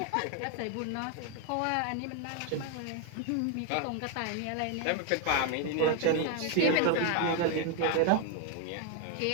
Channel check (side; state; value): both; different; correlation 0.01